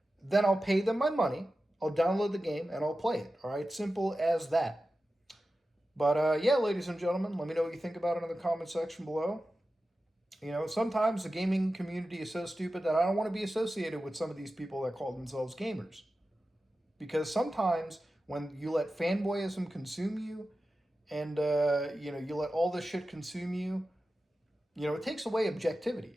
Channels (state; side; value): normal; both; correlation 0.93